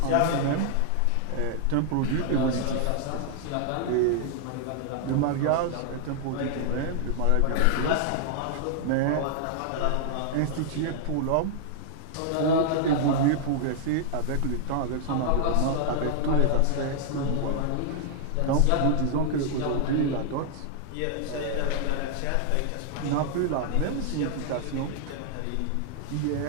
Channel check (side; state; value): both; different; correlation -0.01